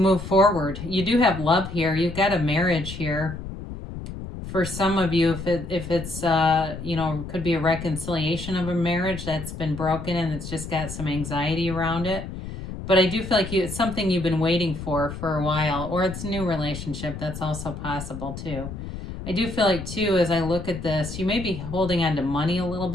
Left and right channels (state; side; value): noise; left; rumble, 9 dB below the sound